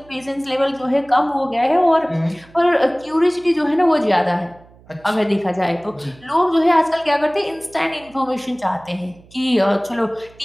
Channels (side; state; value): right; noise; hum, 26 dB below the sound